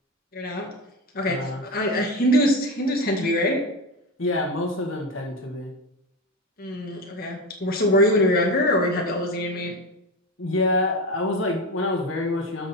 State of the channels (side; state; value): both; normal; correlation 0.19